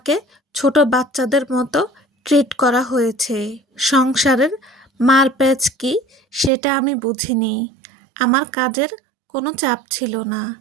ছোট বাচ্চাদের মতো ট্রিট করা হয়েছে। সংসারের মারপ্যাঁচ কি সেটা আমি বুঝিনি। আমার কাজের কোনো চাপ ছিল না।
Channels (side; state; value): left; drops out; at 6.5 s